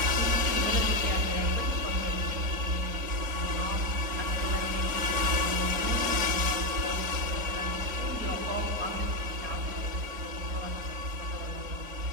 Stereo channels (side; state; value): left; late; 4.3 ms